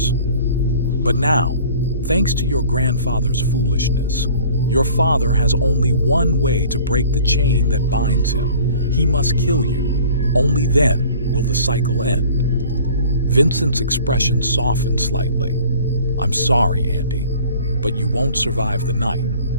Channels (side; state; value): both; inverted; correlation -0.49